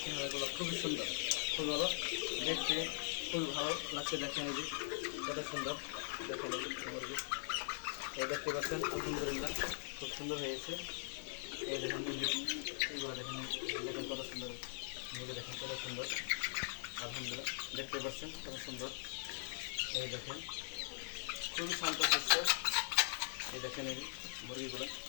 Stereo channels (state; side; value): silent; right; digital silence